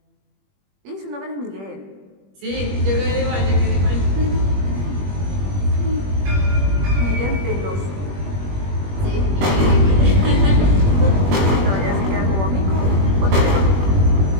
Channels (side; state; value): left; late; 21 ms